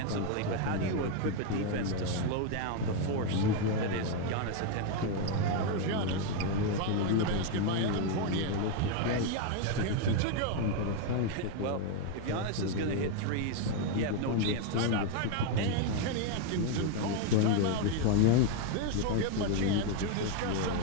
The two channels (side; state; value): both; different; correlation 0.01